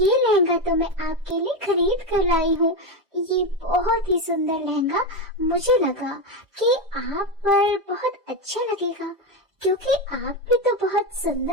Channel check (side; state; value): left; late; 1.2 ms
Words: लहंगा तो मैं आपके लिए खरीद कर लाई हूँ। ये बहुत ही सुंदर लहंगा मुझे लगा कि आप पर बहुत अच्छा लगेगा, क्योंकि आप भी तो बहुत